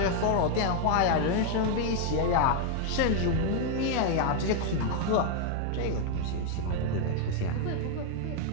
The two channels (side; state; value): both; different; correlation 0.00